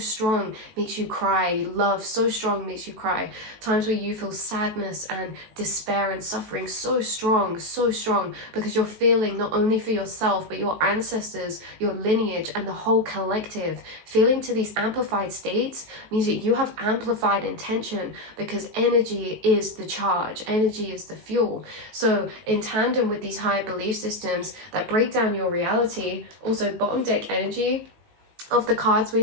makes you cry. Love so strong, makes you cry. Times where you feel sadness and despair and suffering so strong, because you're feeling not only for yourself, but your ancestors, your lineage, and the whole collective. Feeling to these amplified states means that you have amplified intention, because energy is the charge, energy is the fuel. So in tandem with these higher belief systems that break down your reality, also bottom deck energy of the cards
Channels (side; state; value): left; late; 18 ms